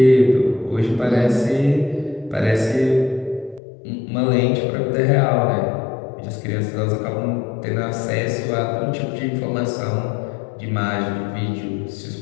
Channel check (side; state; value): right; drops out; at 3.6 s